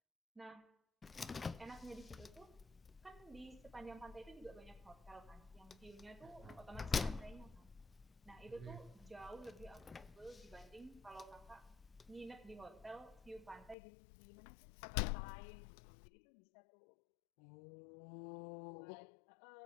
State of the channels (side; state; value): right; drops out; at 13.8 s